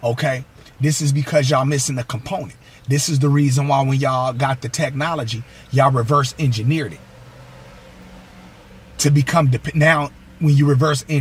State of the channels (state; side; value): identical; both; correlation 1.00